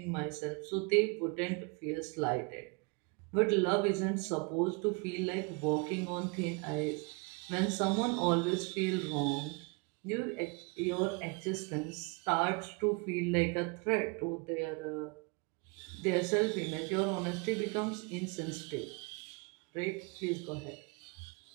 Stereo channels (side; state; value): left; quieter; 30.8 dB